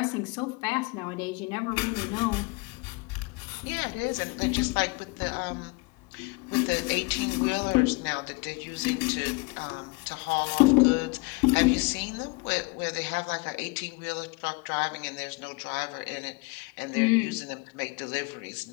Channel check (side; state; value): right; quieter; 26.5 dB